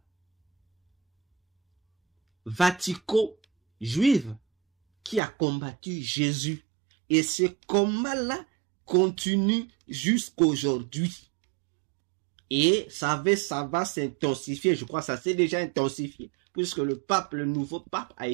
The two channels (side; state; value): left; drops out; at 5.2 s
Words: vatico-juive qui a combattu Jésus. Et ce combat-là continue jusqu'aujourd'hui. Et ça va s'intensifier. Je crois que ça s'est déjà intensifié. Puisque le nouveau pape a